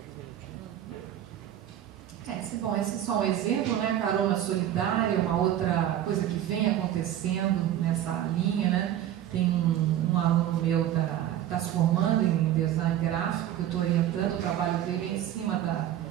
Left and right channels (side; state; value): left; quieter; 11.6 dB